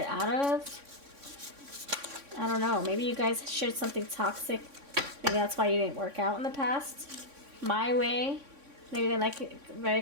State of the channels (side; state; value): left; late; 3.6 ms